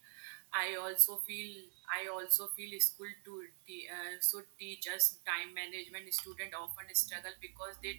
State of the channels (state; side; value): silent; left; 50 dB below the other